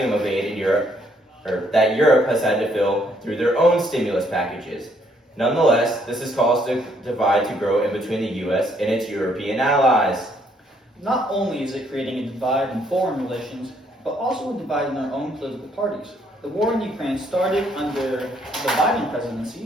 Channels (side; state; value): both; normal; correlation 0.69